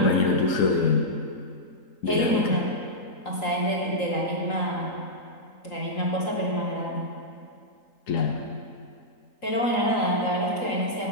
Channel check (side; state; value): right; late; 3.8 ms